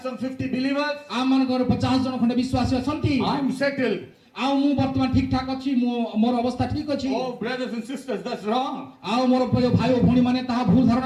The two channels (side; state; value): both; identical; correlation 1.00